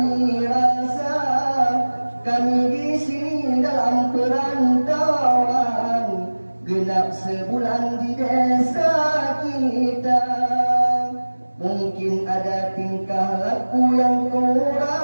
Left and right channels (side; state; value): both; inverted; correlation -1.00